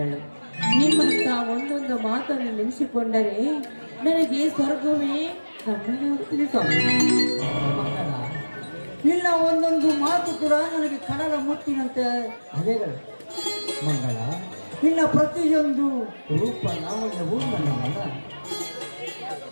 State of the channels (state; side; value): inverted; both; correlation -1.00